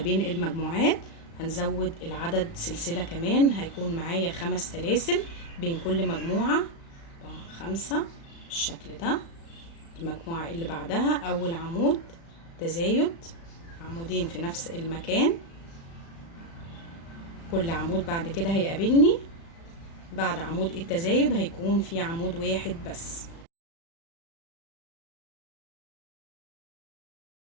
المجموعات. هنزود العدد سلسلة كمان، هيكون معايا 5 سلاسل بين كل مجموعة. 4 5 بالشكل ده. المجموعة اللي بعدها اول عمود تزايد عمودين في نفس المكان. كل عمود بعد كده هيقابلني بعد عمود التزايد هيكون في عمود واحد بس.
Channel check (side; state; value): right; late; 36 ms